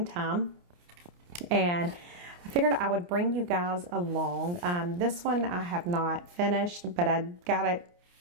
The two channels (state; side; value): late; left; 29 ms